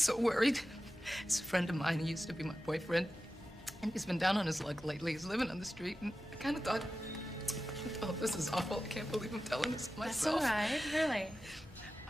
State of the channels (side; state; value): both; normal; correlation 0.93